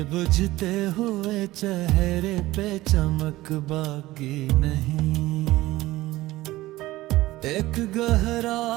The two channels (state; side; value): quieter; left; 17.6 dB